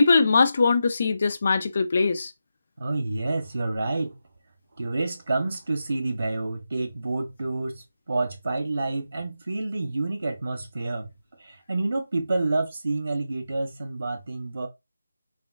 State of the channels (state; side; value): inverted; both; correlation -0.89